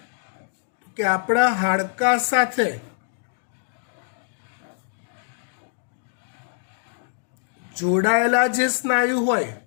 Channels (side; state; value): right; silent; digital silence